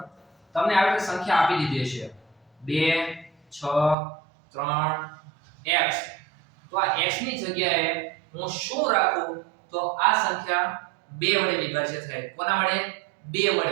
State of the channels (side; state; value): left; drops out; at 4.0 s